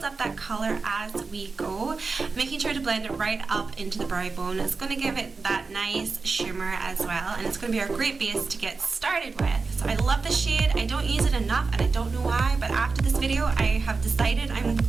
up that color as we go, making sure to blend it right up into the brow bone. It's going to give it that nice shimmer as well, and it's going to be our great base to get started with. So I love the shade. I don't use it enough and I don't know why, but after this video I have decided I'm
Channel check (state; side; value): quieter; left; 4.3 dB